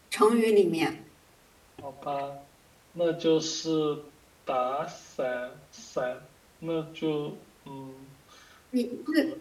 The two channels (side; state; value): both; identical; correlation 1.00